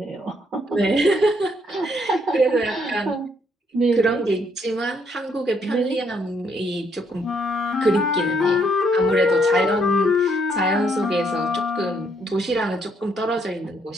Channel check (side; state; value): both; normal; correlation 0.71